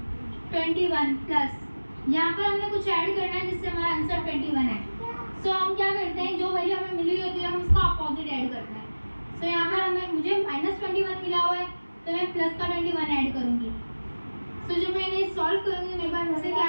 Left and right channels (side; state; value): both; inverted; correlation -1.00